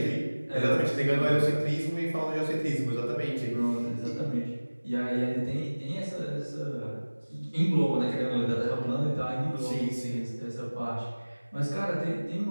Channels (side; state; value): both; inverted; correlation -1.00